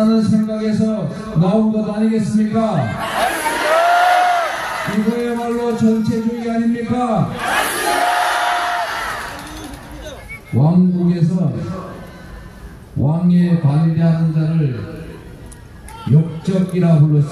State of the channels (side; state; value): both; identical; correlation 1.00